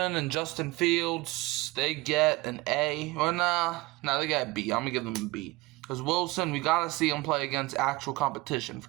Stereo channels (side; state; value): left; quieter; 21.7 dB